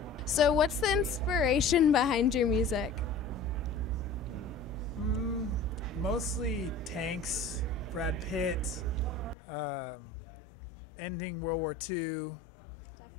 So what's the inspiration behind your music? mostly tanks, Brad Pitt, ending World War II,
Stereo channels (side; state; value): right; drops out; at 9.3 s